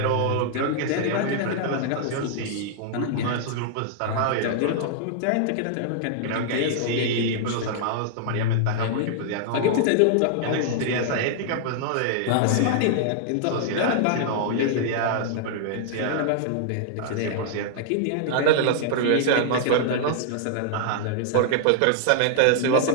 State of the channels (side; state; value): both; different; correlation -0.01